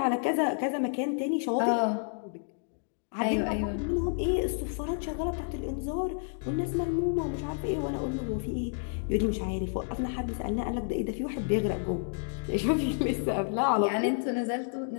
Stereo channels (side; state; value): right; silent; digital silence